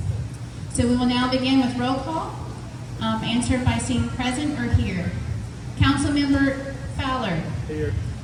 So we will now begin with roll call, answered by saying present or here. Councilmember Fowler. Here.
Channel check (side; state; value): both; identical; correlation 1.00